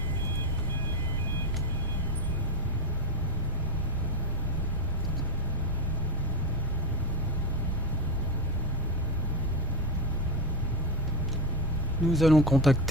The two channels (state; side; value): normal; both; correlation 0.13